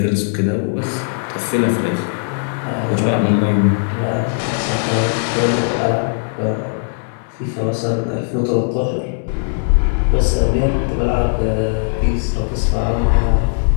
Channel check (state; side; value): silent; right; 67 dB below the other